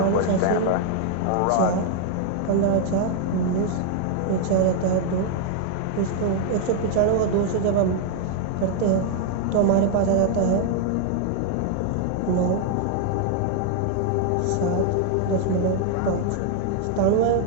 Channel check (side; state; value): both; different; correlation 0.00